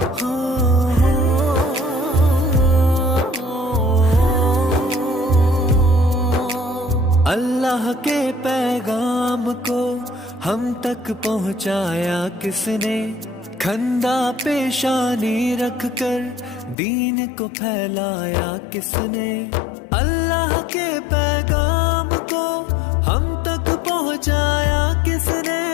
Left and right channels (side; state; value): right; drops out; at 16.8 s